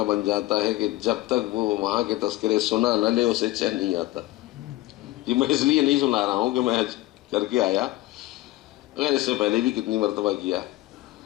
بن جاتا ہے کہ جب تک وہ وہاں کے تذکرے سنا نہ لے اسے چین نہیں آتا. یہ میں اس لیے نہیں سنا رہا ہوں کہ میں حج کر کے آیا، اگر اس سے پہلے بھی کتنی مرتبہ کیا.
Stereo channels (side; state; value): right; quieter; 17.4 dB